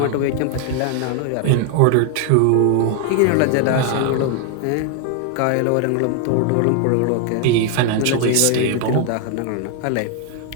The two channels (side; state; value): both; different; correlation 0.00